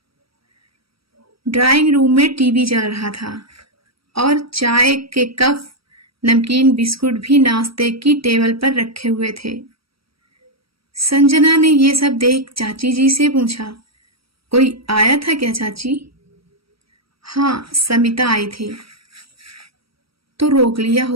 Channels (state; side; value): late; left; 0.75 ms